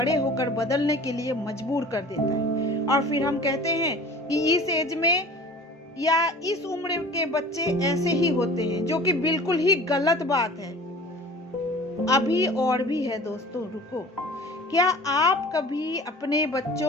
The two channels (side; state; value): both; normal; correlation 0.43